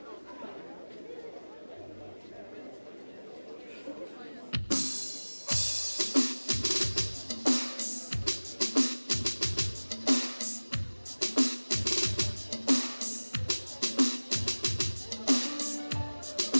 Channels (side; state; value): both; inverted; correlation -1.00